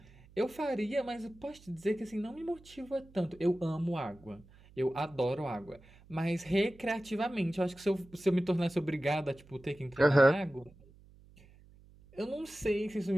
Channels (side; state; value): right; noise; hum, 25 dB below the sound